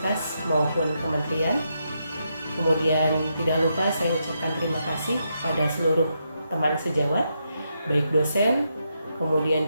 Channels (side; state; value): both; inverted; correlation -0.82